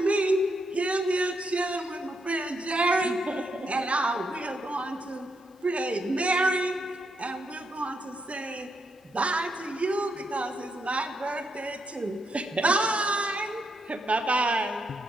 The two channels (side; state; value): both; normal; correlation 0.80